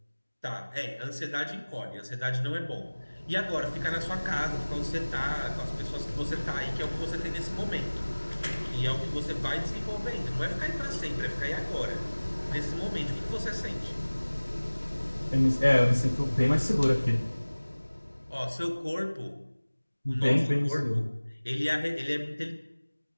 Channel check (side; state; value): both; inverted; correlation -1.00